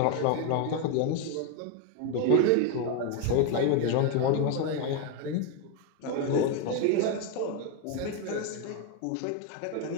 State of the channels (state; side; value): different; both; correlation 0.02